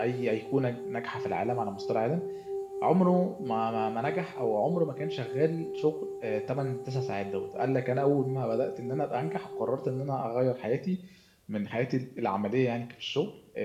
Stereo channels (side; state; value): both; identical; correlation 1.00